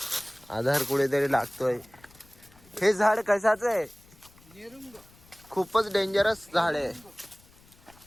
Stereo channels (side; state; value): left; noise; rumble, 26 dB below the sound